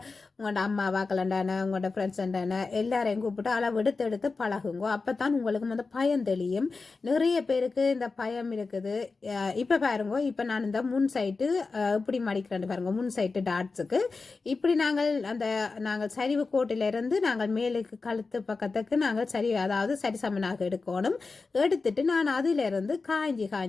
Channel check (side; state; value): right; quieter; 4.1 dB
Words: உங்களோட அம்மா வாக்கலண்டான உங்களோட ஃப்ரெண்ட்ஸ் அண்டான எல்லாரையும் கூப்பிட்டு அளவு எடுத்து பழகுங்க. அப்போ தான் உங்களுக்கு வந்து பயம் தெளியும். நிறைய பேருக்கு இந்த பயம் இருக்குது. இப்போ பாருங்க, இப்போ நான் இந்த முன் சைட்டு இப்படி மடிக்கிறேன் பாருங்க. முன் சைட்டு டாட்ஸுக்கு இப்படி நாங்கள் சரிவு கோட்டிலிருந்து நாங்கள் மேலுக்கு கழுத்து பக்கத்துக்கு நாங்கள் அதாவது சரிசமனாக எடுக்கணும். எடுத்துட்டு நான் அதிலிருந்து காய்ஞ்சி